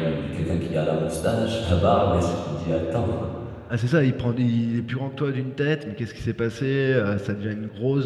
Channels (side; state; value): both; identical; correlation 1.00